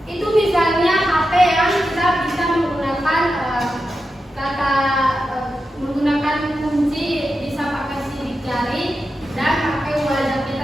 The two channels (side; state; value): both; normal; correlation 0.89